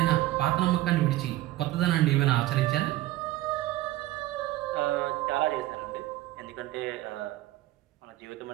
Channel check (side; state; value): left; quieter; 16.2 dB